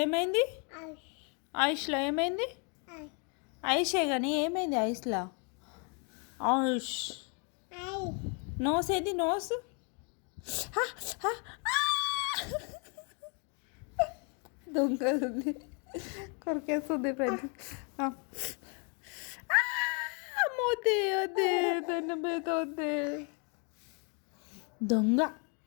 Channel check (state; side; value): quieter; right; 37.2 dB